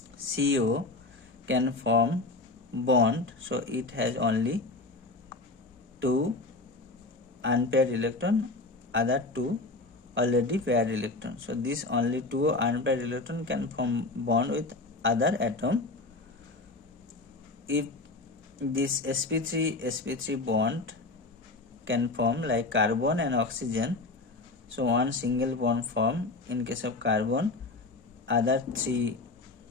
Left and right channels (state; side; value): quieter; right; 3.2 dB